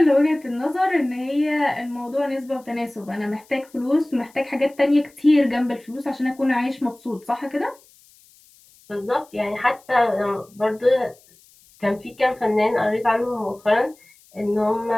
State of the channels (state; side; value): noise; left; hiss, 28 dB below the sound